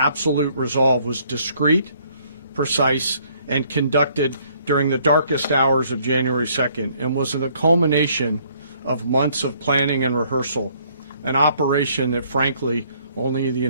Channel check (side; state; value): both; inverted; correlation -0.63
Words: Resolve, was discreet, precise, and conducted during the darkest hours of January 2nd and was the culmination of months of planning and rehearsal, an operation that, frankly, only the